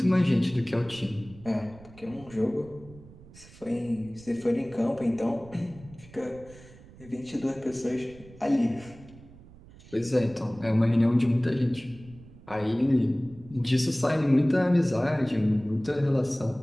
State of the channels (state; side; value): noise; right; rumble, 21 dB below the sound